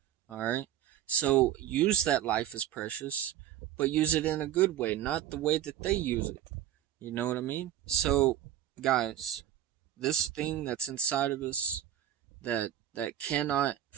All right, so use that life is precious, but use it in a good way, not the way that they use it. You know what I mean? So, guys, this thing that's inside of us that cannot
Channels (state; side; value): quieter; left; 11.5 dB